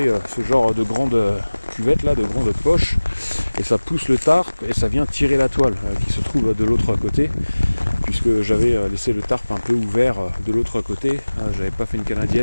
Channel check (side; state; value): both; inverted; correlation -1.00